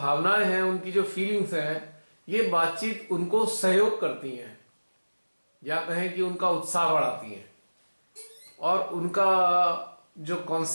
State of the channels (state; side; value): inverted; both; correlation -1.00